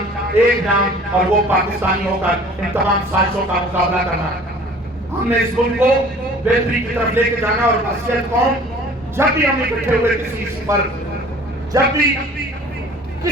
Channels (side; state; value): both; normal; correlation 0.48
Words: ایک نام اور وہ پاکستانی ہو کر ان تمام سازشوں کا مقابلہ کرنا. ہم نے اس ملک کو بہتری کی طرف لے کے جانا. اور حیثیت قوم جب بھی ہم اکٹھے ہوئے کسی ایشو پر, جب بھی